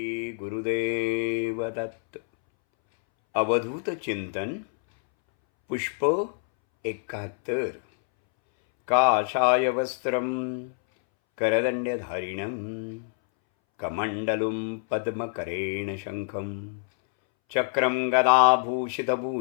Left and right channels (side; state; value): right; silent; 61 dB below the other